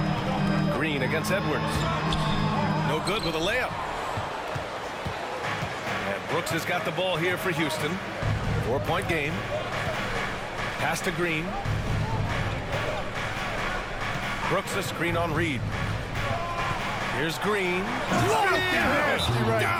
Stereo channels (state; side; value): identical; both; correlation 1.00